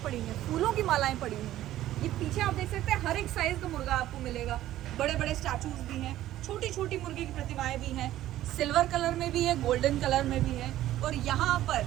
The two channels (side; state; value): left; quieter; 13.8 dB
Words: पड़ी हैं, फूलों की मालाएं पड़ी हुई हैं। ये पीछे आप देख सकते हैं, हर एक साइज का मुर्गा आपको मिलेगा। बड़े बड़े स्टैचूज भी हैं, छोटी छोटी मुर्गी की प्रतिमाएं भी हैं, सिल्वर कलर में भी है, गोल्डन कलर में भी है। और यहाँ पर